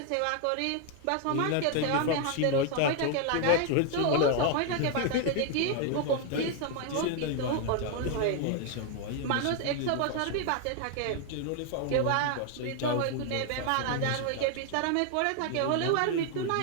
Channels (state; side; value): different; both; correlation 0.01